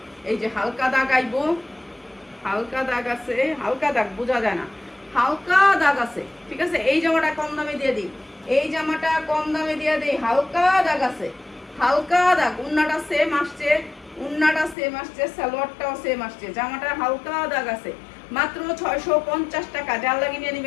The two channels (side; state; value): right; drops out; at 14.8 s